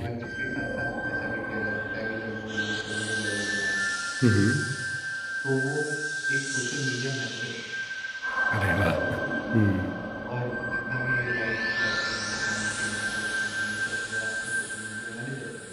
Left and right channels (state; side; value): identical; both; correlation 1.00